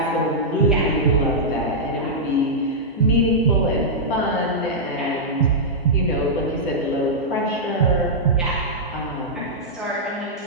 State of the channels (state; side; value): normal; both; correlation -0.09